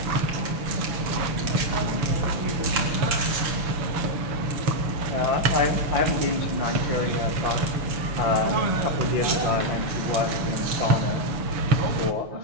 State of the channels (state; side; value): late; left; 6.9 ms